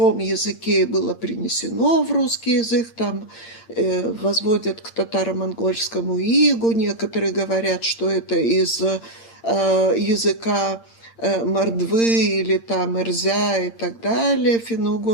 языке и было принесено в русский язык, там возводят к татаро-монгольскому игу. Некоторые говорят, что это из языка мордвы или там эрзя и так далее,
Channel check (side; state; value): right; late; 8.8 ms